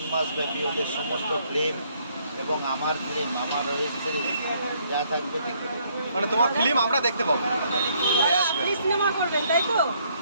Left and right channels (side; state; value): both; inverted; correlation -0.68